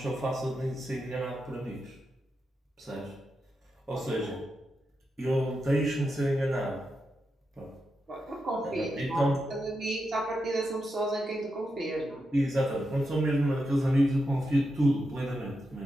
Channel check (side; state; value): both; normal; correlation 0.87